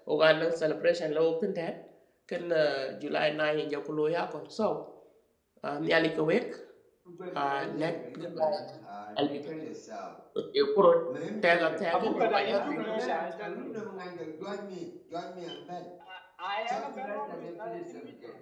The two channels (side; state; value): both; identical; correlation 1.00